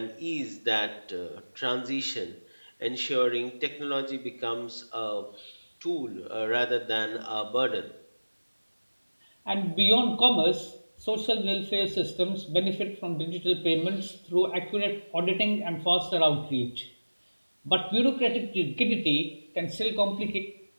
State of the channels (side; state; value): both; inverted; correlation -1.00